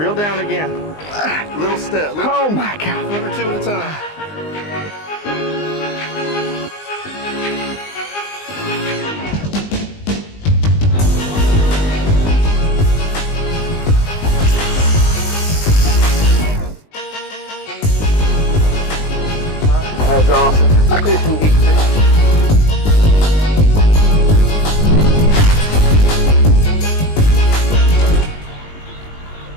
down again. Little step. Oh my God. One or two at a time. That's awesome.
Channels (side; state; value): right; late; 19 ms